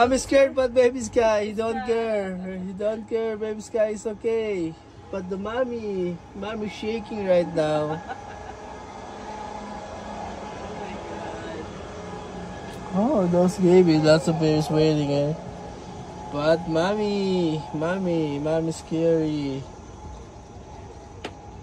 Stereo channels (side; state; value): both; identical; correlation 1.00